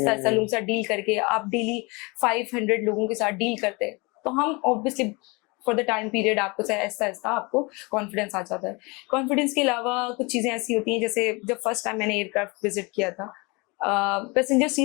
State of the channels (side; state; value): right; quieter; 27.5 dB